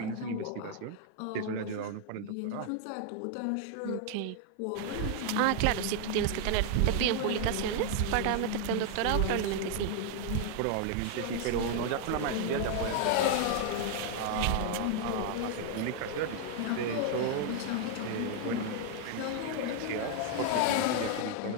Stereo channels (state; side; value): different; both; correlation 0.00